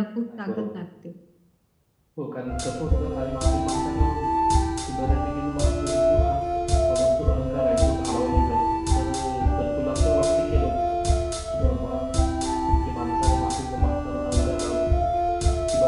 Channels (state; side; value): identical; both; correlation 1.00